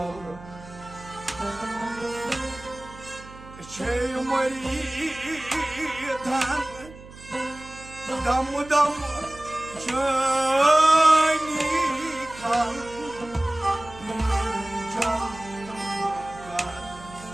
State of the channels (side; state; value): right; noise; hum, 18 dB below the sound